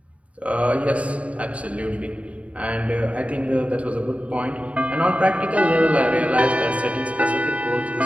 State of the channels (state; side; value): late; left; 0.065 ms